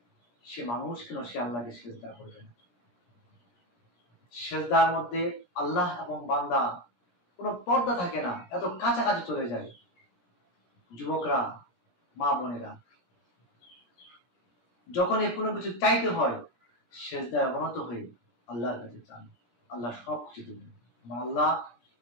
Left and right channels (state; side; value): late; right; 17 ms